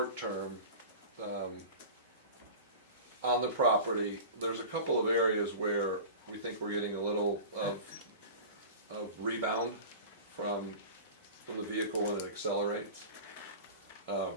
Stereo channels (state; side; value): inverted; both; correlation -0.35